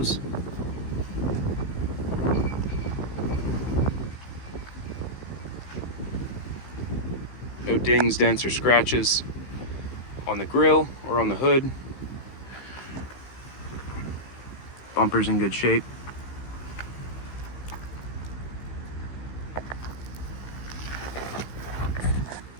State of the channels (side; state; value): right; late; 15 ms